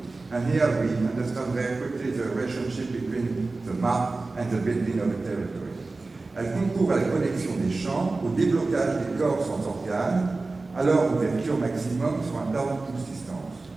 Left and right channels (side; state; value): left; quieter; 3.5 dB